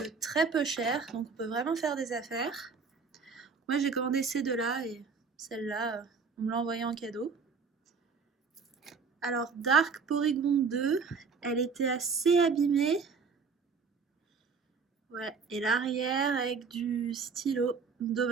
très peu cher, donc on peut vraiment faire des affaires. Moi j'ai commandé ces deux-là et celle-là, on me l'a envoyée en cadeau. Alors Dark Porygon 2, elle était assez abîmée. Ouais, et l'arrière avec du stylo,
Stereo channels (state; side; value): quieter; left; 5.2 dB